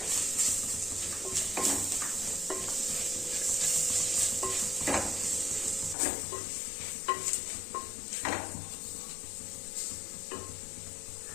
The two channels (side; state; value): right; drops out; at 6.0 s